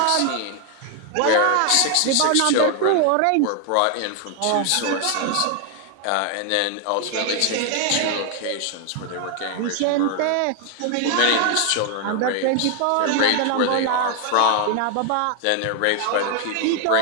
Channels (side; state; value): both; different; correlation 0.00